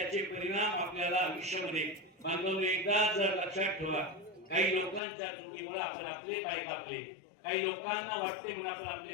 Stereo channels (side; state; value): right; drops out; at 5.0 s